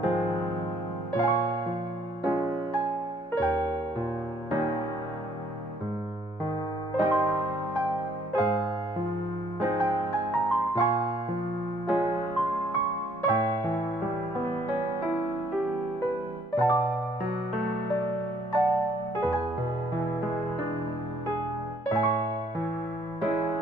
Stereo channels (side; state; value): both; normal; correlation 0.64